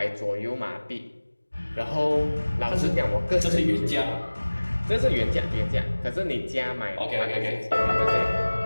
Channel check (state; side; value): inverted; both; correlation -1.00